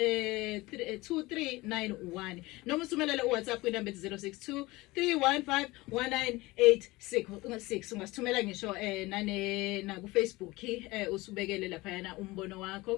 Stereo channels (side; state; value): right; quieter; 21.0 dB